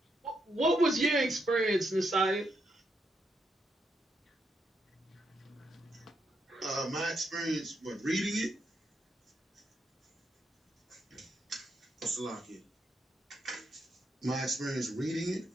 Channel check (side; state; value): both; normal; correlation 0.80